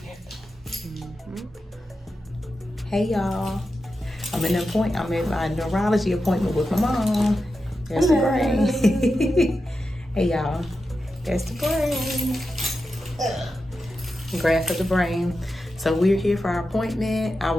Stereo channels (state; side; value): normal; both; correlation 0.90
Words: Hey, y'all. I'm in my neurology appointment with my mom. There's the brain. Hey, y'all. There's the brain. Graph of the brain. So we're here for our appointment. I